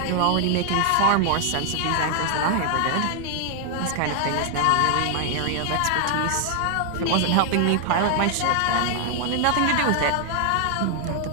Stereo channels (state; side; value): different; both; correlation 0.00